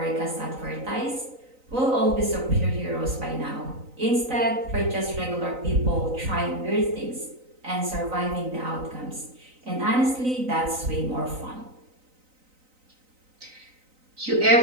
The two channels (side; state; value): left; late; 3.9 ms